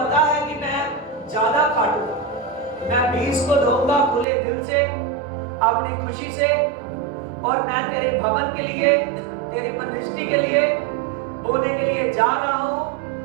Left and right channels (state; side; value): drops out; left; at 4.2 s